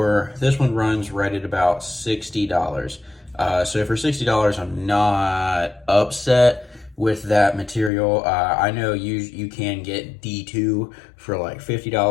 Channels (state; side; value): drops out; right; at 7.9 s